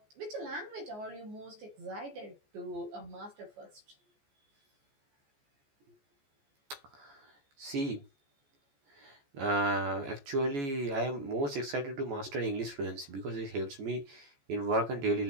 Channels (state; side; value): late; left; 14 ms